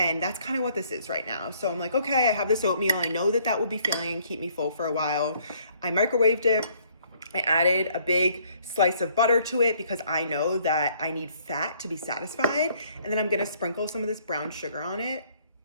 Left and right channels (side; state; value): both; inverted; correlation -0.63